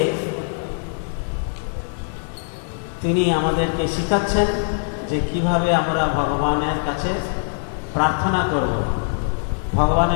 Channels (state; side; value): silent; right; digital silence